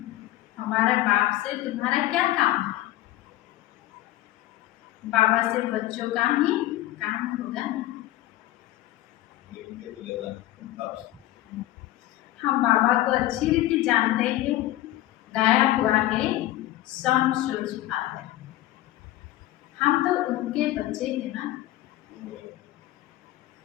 हमारे बाप से तुम्हारा क्या काम है? बाबा से बच्चों का ही काम होगा। हम बाबा को अच्छी रीति जानते हैं। गाया हुआ है सम सूरज फादर, हम तो उनके बच्चे हैं ना।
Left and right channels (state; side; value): quieter; right; 15.5 dB